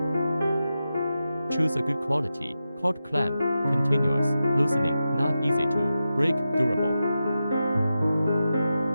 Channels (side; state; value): both; inverted; correlation -0.91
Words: Choose a good quality cord clamp. Continuous loosening, not easy to break, durable.